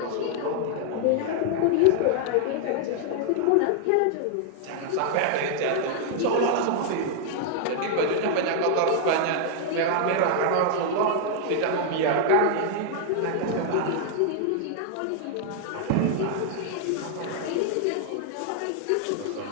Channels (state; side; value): different; both; correlation -0.01